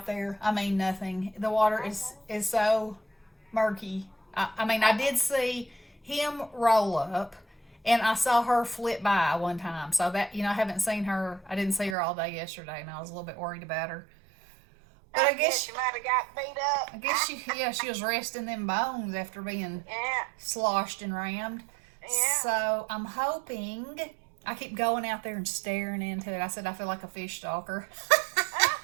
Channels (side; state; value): left; drops out; at 12.0 s